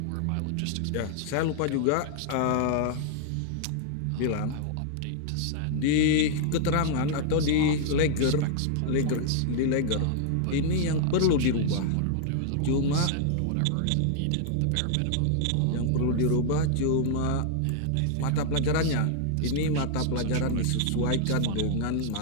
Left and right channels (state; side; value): different; both; correlation 0.00